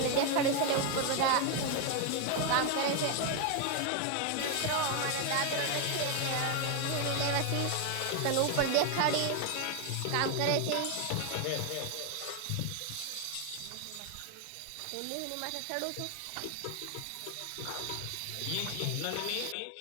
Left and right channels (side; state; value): both; different; correlation 0.01